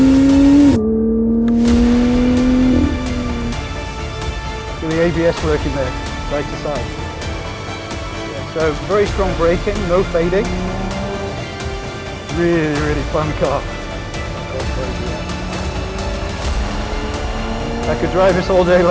See the ABS working there, side to side. So very strong braking, no fading. Really, really fun car. I could drive this all day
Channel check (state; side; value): identical; both; correlation 1.00